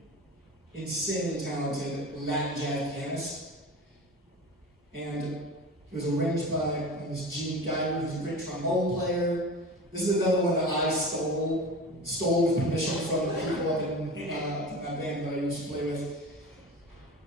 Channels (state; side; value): normal; both; correlation 0.33